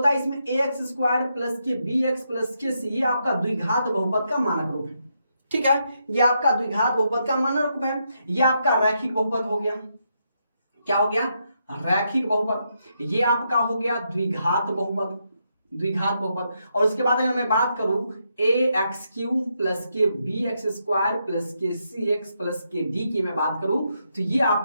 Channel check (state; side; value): inverted; both; correlation -0.80